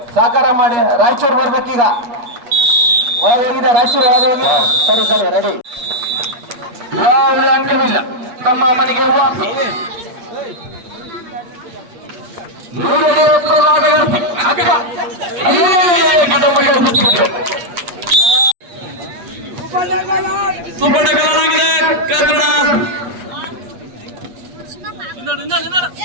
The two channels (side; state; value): left; late; 8.4 ms